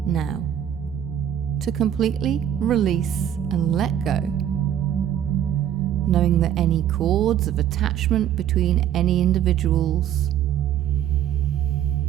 now to completely release and let go, knowing that any cords of attachment between any individuals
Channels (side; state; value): left; quieter; 10.3 dB